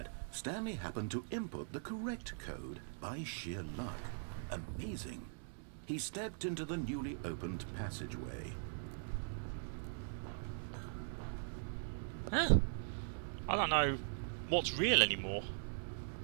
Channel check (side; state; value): left; silent; digital silence